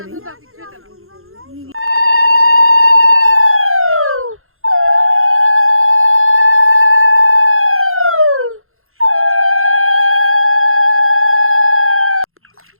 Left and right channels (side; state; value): left; late; 0.61 ms